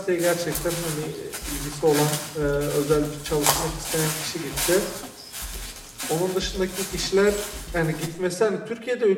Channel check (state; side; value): identical; both; correlation 1.00